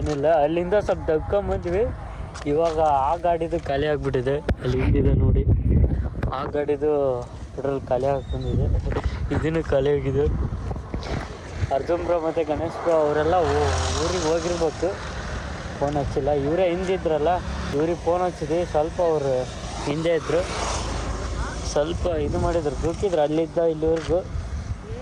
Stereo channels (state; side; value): identical; both; correlation 1.00